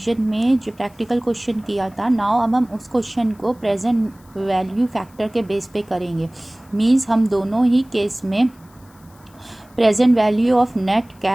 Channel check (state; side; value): noise; left; hiss, 30 dB below the sound